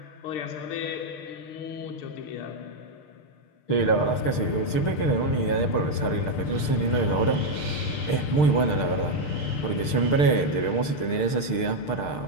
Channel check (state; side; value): late; right; 6.7 ms